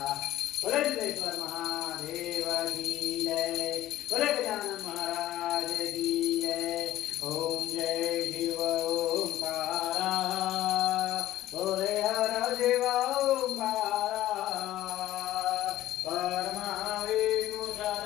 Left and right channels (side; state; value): right; quieter; 14.2 dB